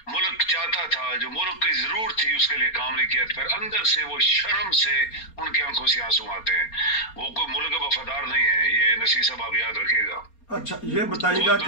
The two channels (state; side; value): late; right; 4.3 ms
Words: मुल्क चाहता था, जो मुल्क की जरूरत थी, उसके लिए काम नहीं किया। फिर अंदर से वो शर्म से उनकी आंखों से आंसू आते हैं। वो कोई मुल्क का वफादार नहीं है, ये नसीर साहब आप याद रखिएगा। अच्छा ये बताइएगा